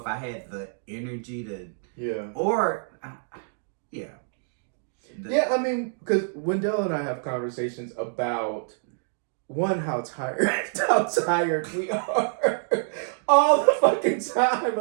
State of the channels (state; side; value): silent; left; digital silence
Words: I had the energy to, I mean, because Wendell and I have conversations about, one, how tired we are all the fucking time,